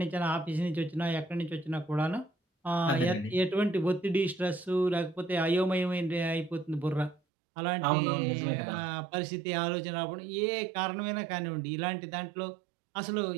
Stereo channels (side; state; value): left; drops out; at 7.2 s